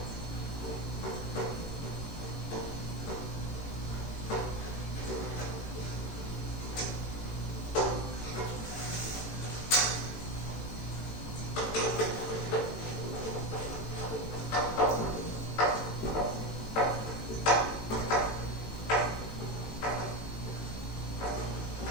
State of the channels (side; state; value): right; late; 18 ms